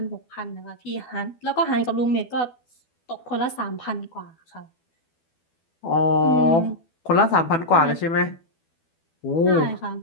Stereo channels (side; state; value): right; late; 12 ms